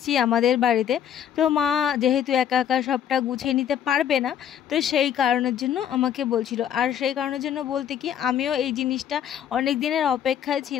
আমাদের বাড়িতে। তো মা যেহেতু একা একা সবটা গুছিয়ে নিতে পারবে না, তো সেই কারণের জন্য আমাকে বলছিল। আর সেই কারণের জন্য বলতে কি, আমিও এই জিনিসটা অনেক দিনের অপেক্ষায়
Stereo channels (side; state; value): right; quieter; 9.5 dB